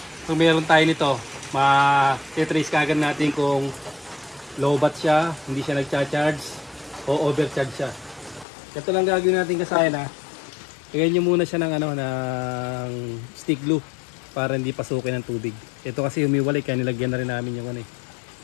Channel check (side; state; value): right; drops out; at 8.5 s